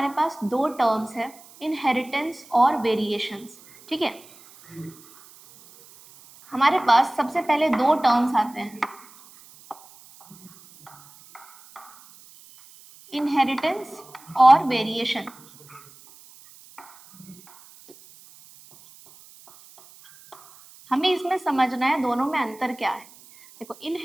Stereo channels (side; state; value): right; noise; hiss, 23 dB below the sound